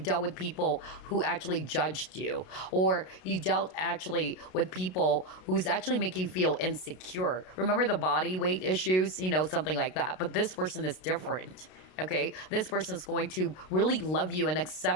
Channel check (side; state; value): right; late; 32 ms